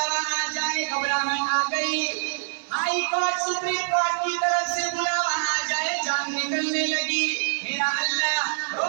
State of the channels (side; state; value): left; silent; digital silence